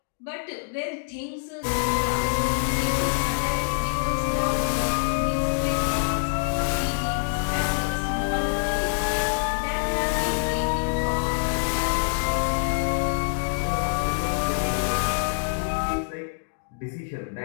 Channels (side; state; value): right; silent; digital silence